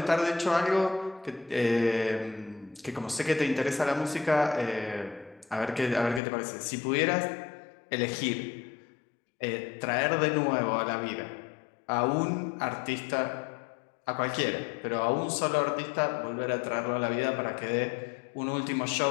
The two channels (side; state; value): right; drops out; at 6.2 s